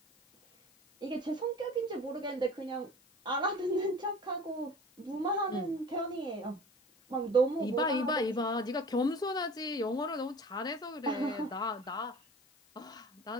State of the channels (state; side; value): noise; left; hiss, 30 dB below the sound